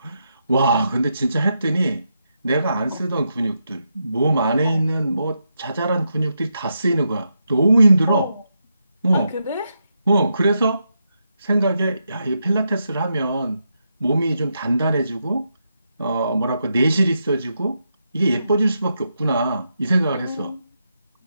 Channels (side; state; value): both; inverted; correlation -0.83